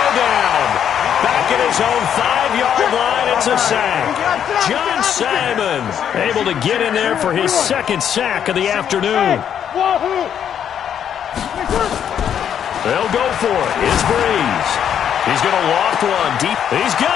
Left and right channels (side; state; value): right; quieter; 9.0 dB